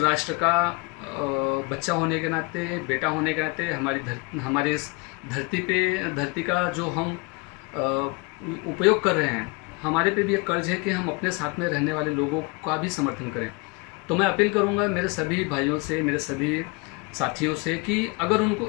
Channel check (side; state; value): right; quieter; 28.8 dB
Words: का बच्चा होने के नाते, बेटा होने के नाते, हमारे इस धरती का जो हम उपयोग कर रहे हैं, हमारे पे भी एक कर्ज है कि हम अपने साथ में रहने वाले लोगों का भी समर्थन करें। तो मैं अपील करूंगा मेरे सभी भाइयों से, मेरे सभी साथियों से कि अगर उनको